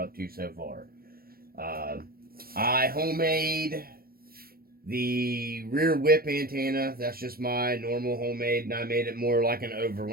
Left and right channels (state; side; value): late; left; 0.44 ms